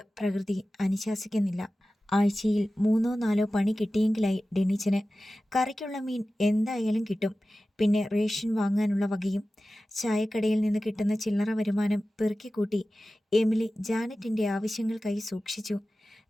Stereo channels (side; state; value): both; normal; correlation 0.95